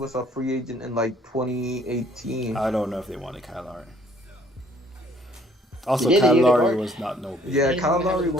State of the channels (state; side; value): normal; both; correlation 0.60